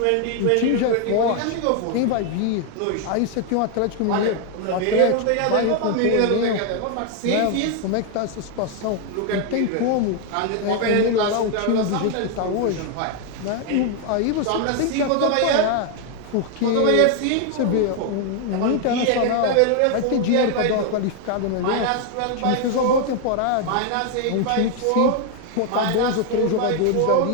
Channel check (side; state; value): both; different; correlation 0.00